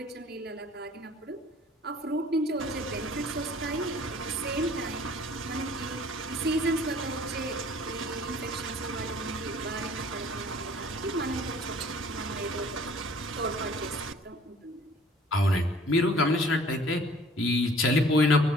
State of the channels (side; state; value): both; normal; correlation 0.52